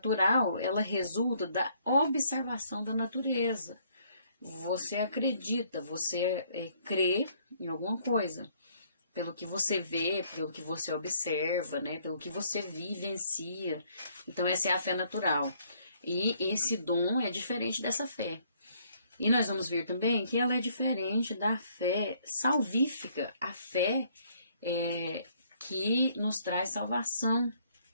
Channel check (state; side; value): inverted; both; correlation -0.66